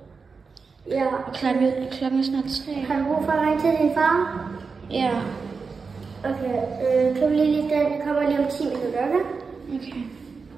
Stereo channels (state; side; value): quieter; left; 4.9 dB